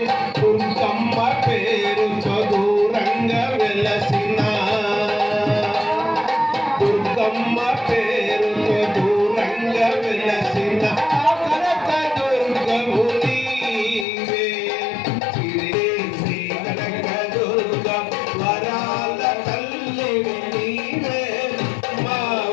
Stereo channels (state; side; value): drops out; right; at 14.1 s